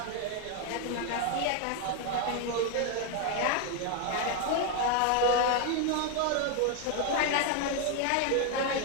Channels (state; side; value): different; both; correlation 0.01